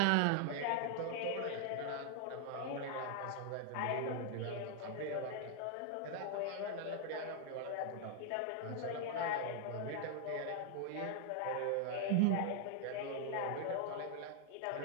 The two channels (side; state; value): both; different; correlation 0.00